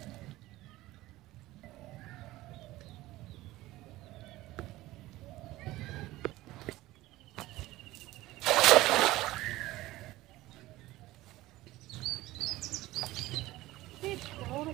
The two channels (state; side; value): quieter; left; 17.6 dB